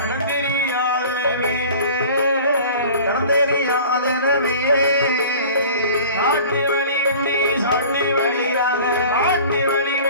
சாட்டி வழி விட்டு சாட்டி வழியாக சாட்டி வழி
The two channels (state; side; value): inverted; both; correlation -0.43